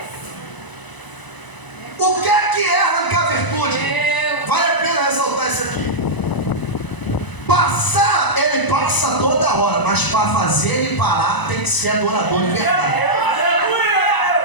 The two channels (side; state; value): right; late; 1.0 ms